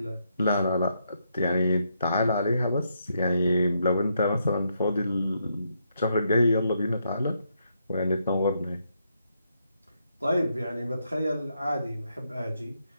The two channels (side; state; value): both; inverted; correlation -0.78